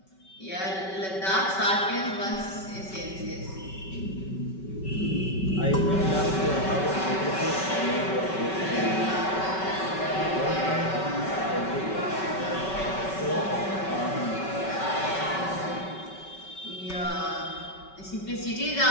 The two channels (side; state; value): right; late; 5.3 ms